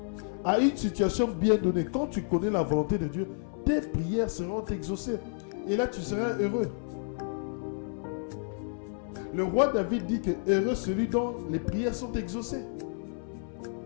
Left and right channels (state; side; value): silent; right; 58 dB below the other